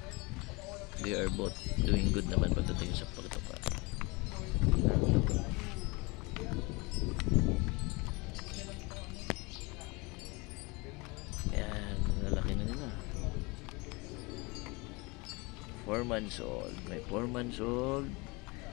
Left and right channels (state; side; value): quieter; right; 26.3 dB